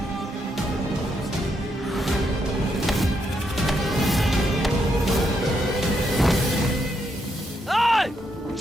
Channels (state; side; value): normal; both; correlation 0.79